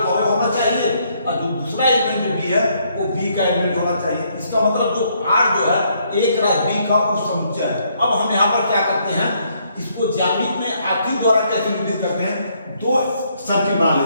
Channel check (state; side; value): inverted; both; correlation -0.71